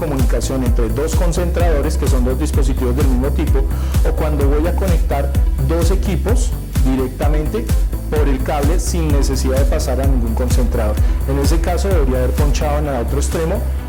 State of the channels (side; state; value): both; identical; correlation 1.00